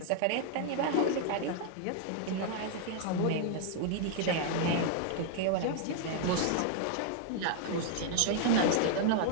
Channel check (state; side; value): different; both; correlation 0.00